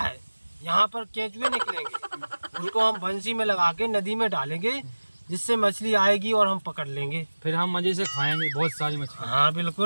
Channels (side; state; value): both; inverted; correlation -1.00